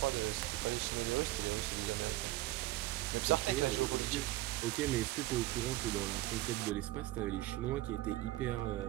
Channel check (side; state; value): left; quieter; 17.6 dB